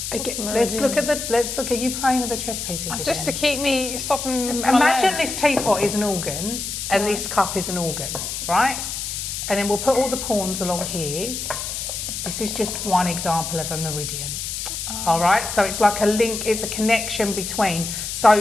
let's look at you playing with the chess pieces again. Just to keep me stopping. Imagine this teapot is an organ, and this cup is an organ, right? And then we'll put all the pawns along here. This is just one example of a meridian. All right, so it's like a link, it's a connection between.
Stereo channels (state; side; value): noise; left; hiss, 5 dB below the sound